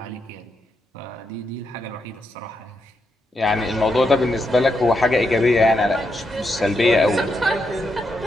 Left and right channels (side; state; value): both; normal; correlation 0.82